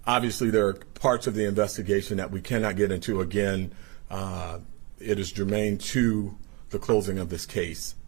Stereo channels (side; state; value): left; quieter; 26.5 dB